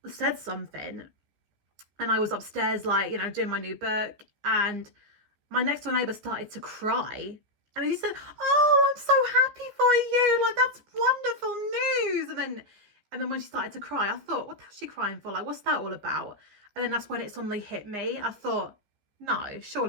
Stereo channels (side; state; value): left; late; 14 ms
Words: said something, and I was upstairs doing my new book, and my next door neighbour started to cry. And he said, "Oh, I'm so happy for you. That's wonderful news." And then when she started to cry, I thought, what the hell is she crying for? What's that all about? And then that's when it suddenly hit me. I thought, no,